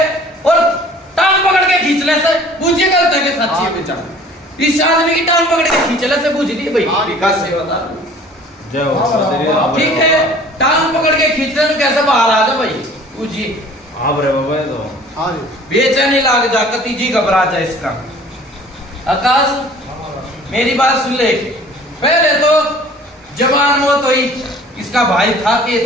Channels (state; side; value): normal; both; correlation 0.49